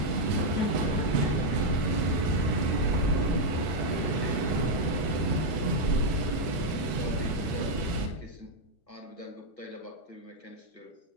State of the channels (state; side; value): late; right; 1.4 ms